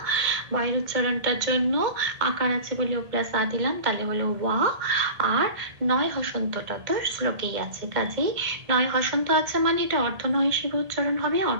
বয়ের উচ্চারণটার জন্য আকার আছে বলে ও প্লাস আ দিলাম, তাহলে হলো ওয়া। আর নয় হসন্তটা তো শ্লোকেই আছে, কাজেই নয় হসন্ত আছে মানে এটা অর্ধ নয় হিসেবে উচ্চারণ হবে।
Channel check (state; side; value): late; left; 1.8 ms